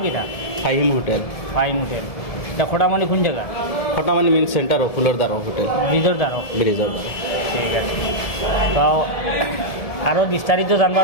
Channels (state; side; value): late; right; 1.7 ms